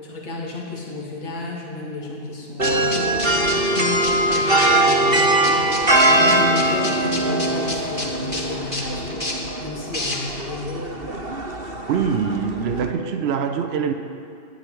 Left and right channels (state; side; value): late; left; 2.7 ms